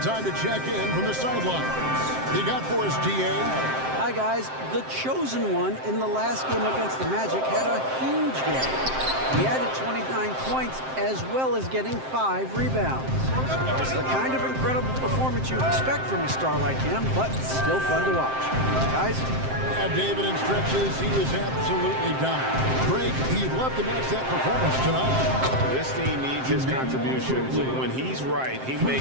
time to check in from the sidelines. You got for us, DA? Hi, guys. The chosen one in the last game against the Magic had a huge game. He added 29 points as well as getting 5 rebounds. It's the kind of incredible performance you expect from a star like him, but still fun to watch. Guys? Yeah, David, in stretches, he was absolutely down. Greg, he'd love to match that performance tonight. This team needs his contributions. When he's right, he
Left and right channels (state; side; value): late; left; 7.6 ms